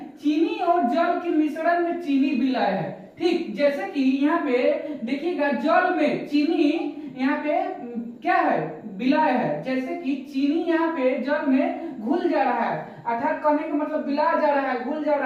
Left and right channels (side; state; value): both; identical; correlation 1.00